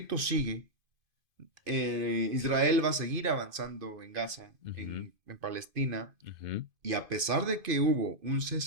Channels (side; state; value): left; late; 2.5 ms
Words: sigue. Israel va a seguir avanzando en Gaza, ujú, en Palestina. ujú, Y a pesar de que hubo un